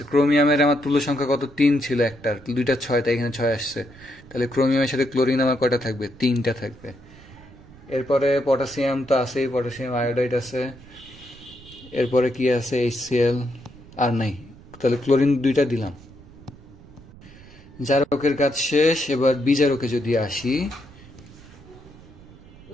ক্রোমিয়ামের আমার তুল্য সংখ্যা কত, 3 ছিল, একটার 2টা 6, তাই এখানে 6 আসছে। তাহলে ক্রোমিয়ামের সাথে ক্লোরিন আমার কয়টা থাকবে, 3টা থাকবে। এরপরে পটাশিয়াম তো আছেই, পটাশিয়াম আয়োডাইড আছে। এরপরে কি আছে, HCl আর নাই, তাহলে ক্লোরিন 2টা দিলাম। জারকের কাজ শেষ। এবার বিজারকে যদি আসি,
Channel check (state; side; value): noise; right; rumble, 21 dB below the sound